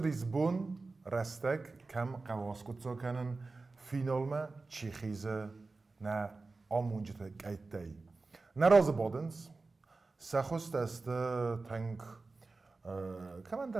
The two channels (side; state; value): left; quieter; 3.7 dB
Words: Lisbon restek kem qawaskutso kenen finalme Tsjechize na amunjete kaitei. Na razabodens سخست است تنگ کمان